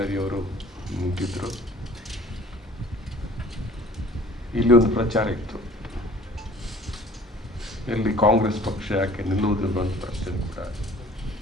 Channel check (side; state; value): both; normal; correlation 0.49